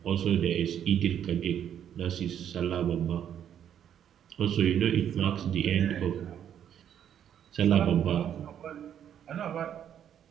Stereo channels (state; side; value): quieter; left; 9.5 dB